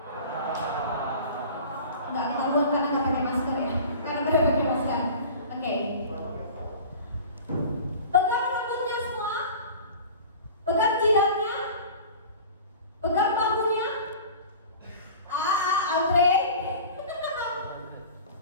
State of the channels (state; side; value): inverted; both; correlation -0.40